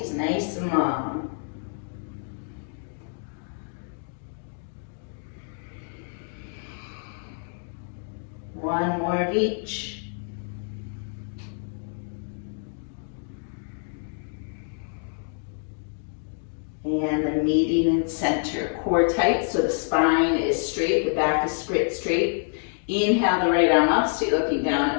nice and long. One more of each. And the meeting in center. Core tight so the spine is straight, the back is straight. Inhale the right arm up, stay looking down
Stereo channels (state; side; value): silent; right; 56 dB below the other